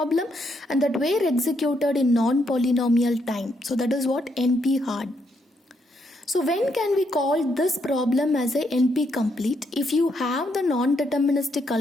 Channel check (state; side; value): normal; both; correlation 0.76